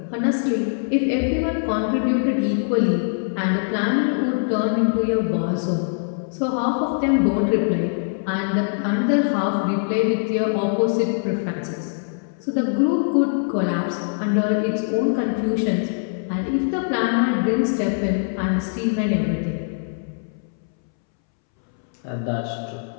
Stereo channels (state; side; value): silent; right; 64 dB below the other